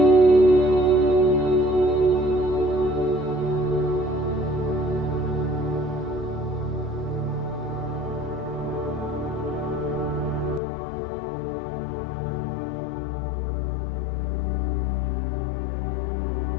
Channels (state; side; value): drops out; right; at 10.6 s